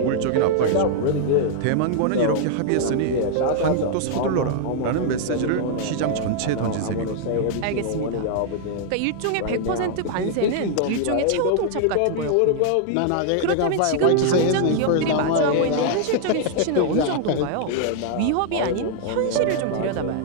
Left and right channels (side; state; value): both; different; correlation -0.01